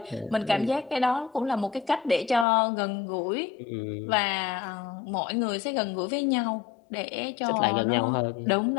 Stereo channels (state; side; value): drops out; right; at 2.5 s